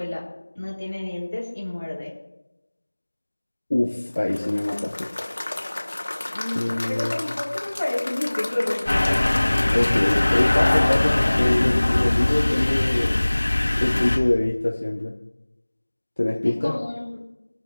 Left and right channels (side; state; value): both; inverted; correlation -1.00